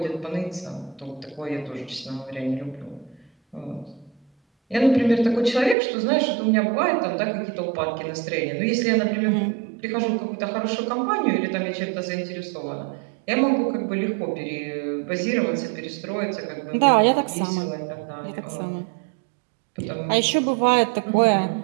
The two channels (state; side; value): drops out; left; at 5.8 s